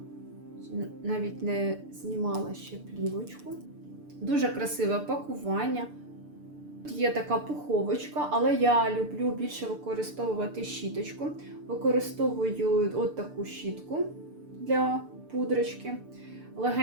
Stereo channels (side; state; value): left; late; 6.8 ms